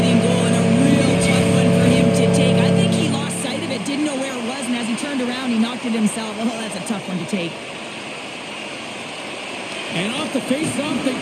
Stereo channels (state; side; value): identical; both; correlation 1.00